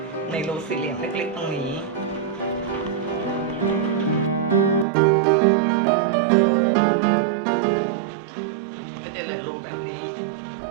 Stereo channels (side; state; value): left; drops out; at 4.9 s